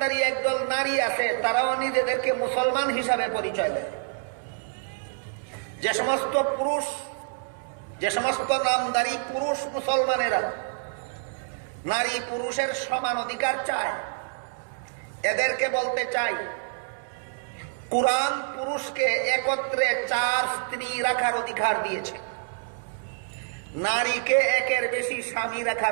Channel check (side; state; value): left; silent; digital silence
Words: একদল নারী আছে, তারাও নিজেদেরকে মুসলমান হিসাবে পরিচয় দেয়। যে সমস্ত নামদারি পুরুষ মুসলমানেরা নারী পুরুষের সমান অধিকার চায়, এদেরকে বলতে চাই, কোরআন পুরুষকে একত্রে 4 স্ত্রী রাখার অধিকার দিয়েছে, নারীকে একের বেশি স্বামী